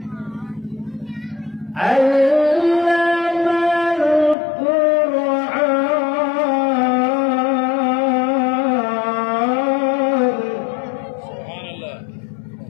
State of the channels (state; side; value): drops out; right; at 4.4 s